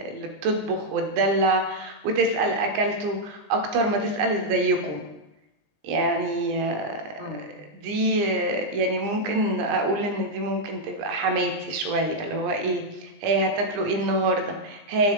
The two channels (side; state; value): left; late; 20 ms